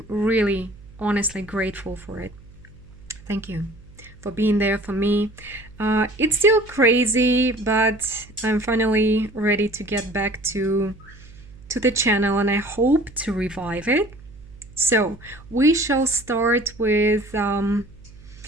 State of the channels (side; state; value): right; noise; hum, 21 dB below the sound